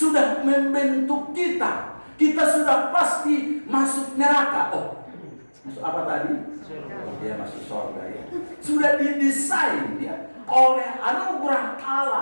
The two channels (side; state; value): both; inverted; correlation -1.00